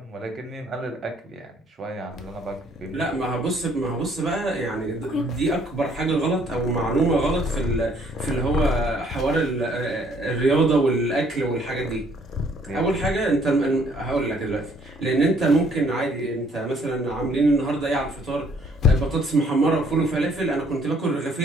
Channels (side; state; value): both; normal; correlation 0.63